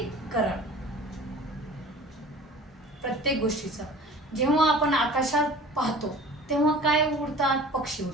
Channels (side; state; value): both; normal; correlation 0.43